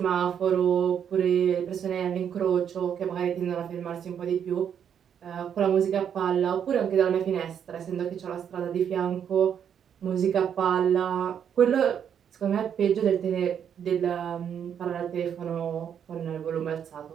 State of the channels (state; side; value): quieter; left; 8.4 dB